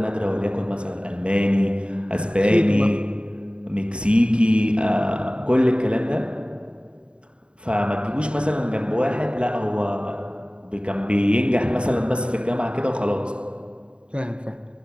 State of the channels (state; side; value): late; left; 0.054 ms